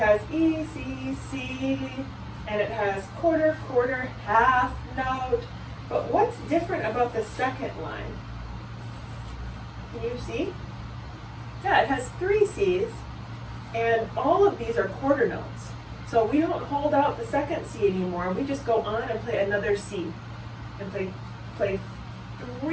E, C, C, and it has quarter, quarter, half, note. But what's different about the second line? Can you see? Yeah, it has 3 C's, and all of these are quarter notes. So we don't hold out the second C anymore. We just go on and play another C, and play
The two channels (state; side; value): identical; both; correlation 1.00